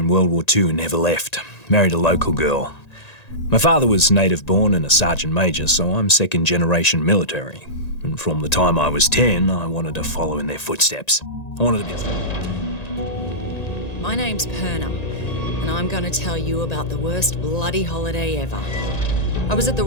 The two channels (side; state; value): right; late; 1.9 ms